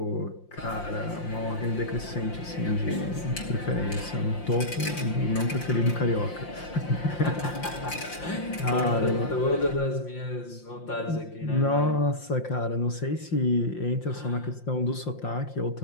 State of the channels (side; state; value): right; late; 5.7 ms